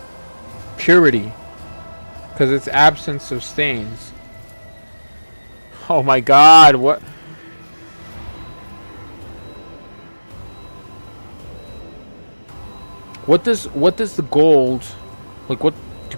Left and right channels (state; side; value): inverted; both; correlation -1.00